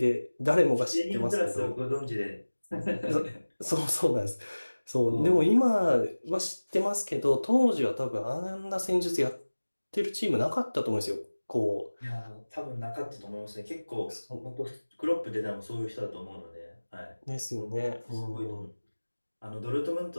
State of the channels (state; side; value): inverted; both; correlation -1.00